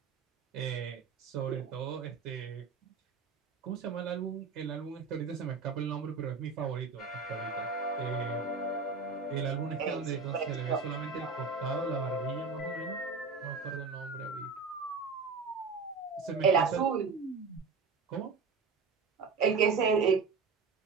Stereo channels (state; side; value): quieter; left; 4.9 dB